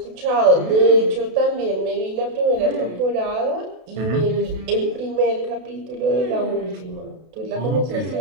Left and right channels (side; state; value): left; late; 32 ms